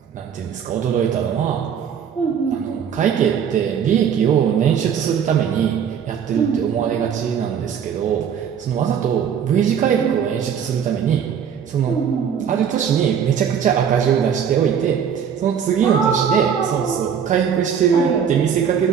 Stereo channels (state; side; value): quieter; left; 7.8 dB